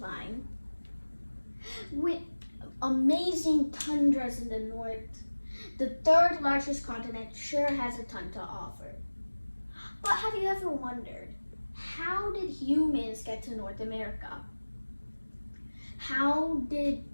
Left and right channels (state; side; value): inverted; both; correlation -1.00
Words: with amazing tundras in the north, the third largest continent sure has a ton to offer. But have you ever wondered, how did humans get to North America? How did